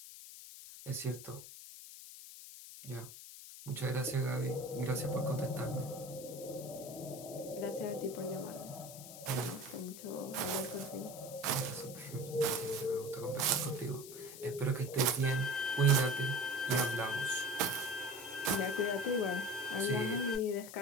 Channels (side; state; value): left; noise; hiss, 13 dB below the sound